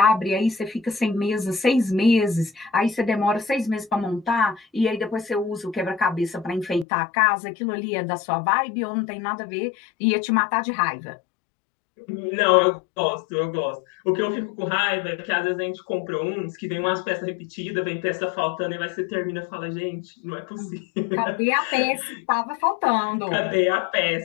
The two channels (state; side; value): drops out; right; at 6.9 s